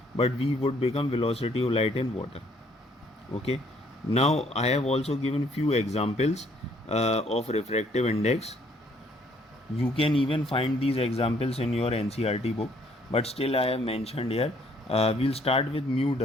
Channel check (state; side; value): normal; both; correlation 0.64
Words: but v would become velocity of light in water. Okay, now I have also given few examples of refractive index. You can even find these examples in your NCERT book, but still I have mentioned here. We'll start with mu